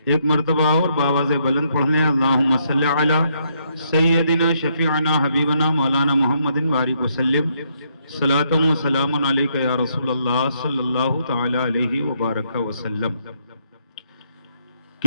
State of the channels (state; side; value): inverted; both; correlation -0.73